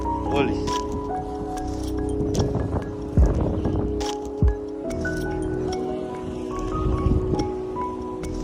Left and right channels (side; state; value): both; identical; correlation 1.00